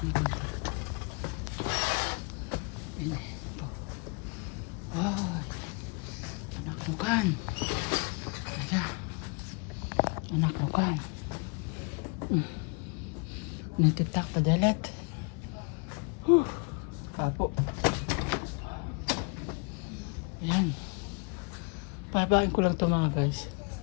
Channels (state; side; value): quieter; right; 33.0 dB